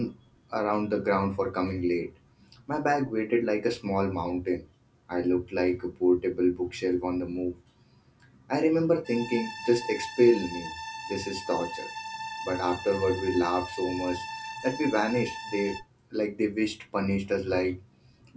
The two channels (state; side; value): identical; both; correlation 1.00